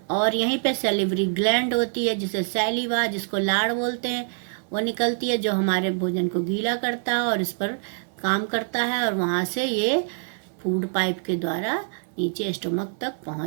और यहीं पे सैलिवरी ग्लैंड होती है जिसे सैलिवा, जिसको लाड़ बोलते हैं, वो निकलती है जो हमारे भोजन को गीला करता है और इस पर काम करता है, और वहाँ से ये फूड पाइप के द्वारा नीचे स्टमक तक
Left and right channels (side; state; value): left; silent; 62 dB below the other